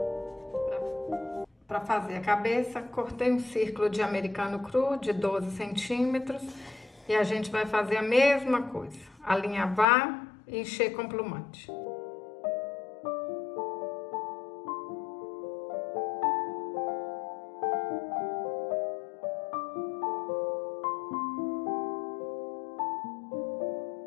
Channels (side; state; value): right; drops out; at 9.9 s